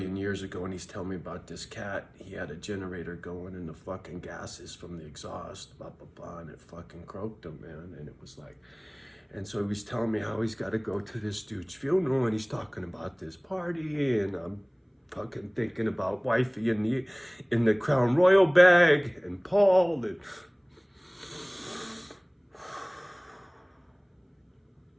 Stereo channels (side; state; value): both; identical; correlation 1.00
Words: years ago. And he's telling me about this cat. He had a generator going, and the fucking gases from the exhaust, blah blah blah, and it fucking croaked him, man. And it was like, and so he was telling me how he's got to go to this dude's funeral, and he's talking about this party, and I'm fucking thinking about wifey in the Crown Royal bag, and Paul, and